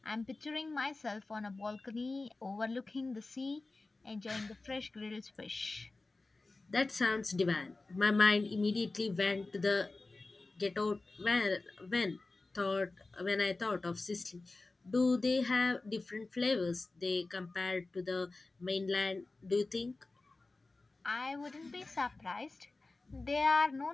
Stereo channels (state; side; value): quieter; right; 3.4 dB